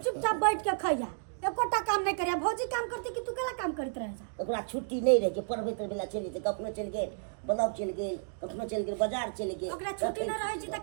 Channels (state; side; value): silent; left; digital silence